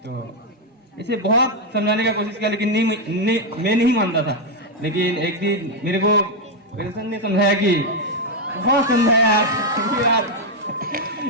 तो ऐसे बहुत समझाने का कोशिश किया, लेकिन मैं नहीं मानता था। लेकिन एक दिन मेरे को पेंशन ने समझाया कि बहुत समझाया यार।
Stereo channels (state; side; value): normal; both; correlation 0.02